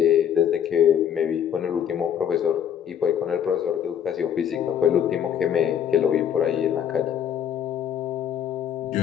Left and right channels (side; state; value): right; quieter; 9.0 dB